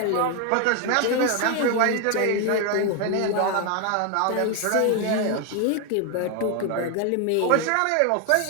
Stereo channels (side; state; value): both; different; correlation 0.01